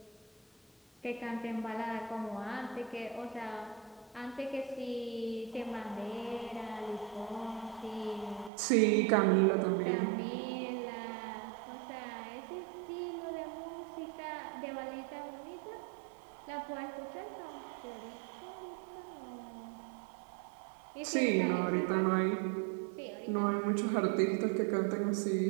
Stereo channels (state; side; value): drops out; left; at 8.5 s